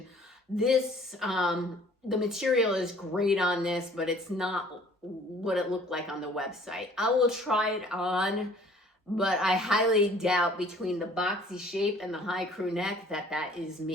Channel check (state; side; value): normal; both; correlation 0.54